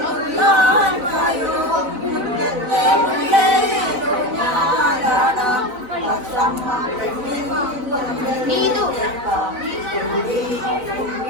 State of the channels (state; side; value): late; left; 4.0 ms